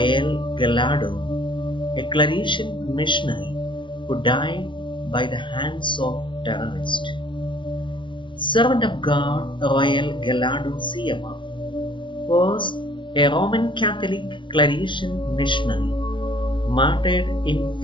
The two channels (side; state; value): right; late; 0.24 ms